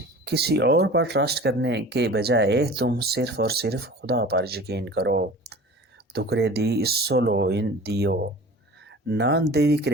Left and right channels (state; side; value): normal; both; correlation 0.40